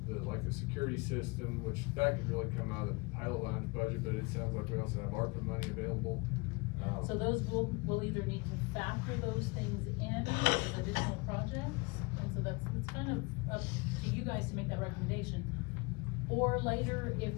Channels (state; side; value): quieter; right; 27.2 dB